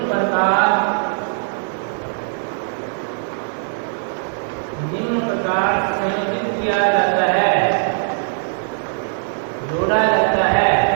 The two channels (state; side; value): silent; left; digital silence